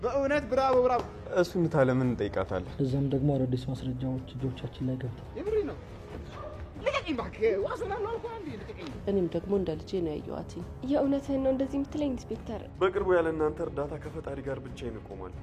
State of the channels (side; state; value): both; identical; correlation 1.00